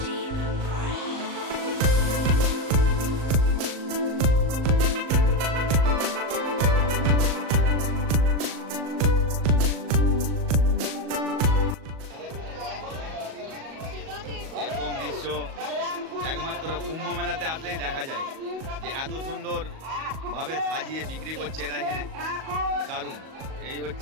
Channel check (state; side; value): late; left; 38 ms